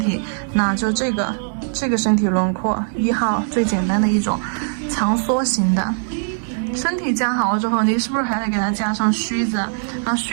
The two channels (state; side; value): silent; left; 62 dB below the other